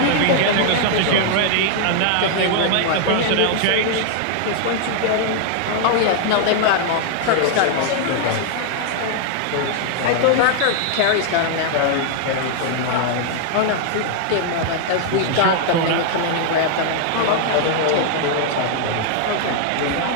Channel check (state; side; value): different; both; correlation 0.00